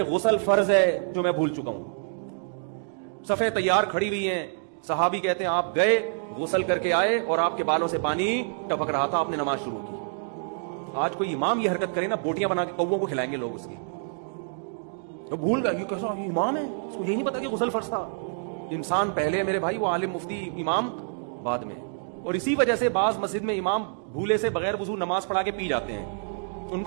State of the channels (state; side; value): silent; left; digital silence